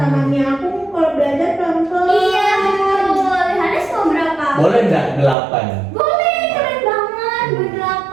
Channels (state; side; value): drops out; left; at 5.4 s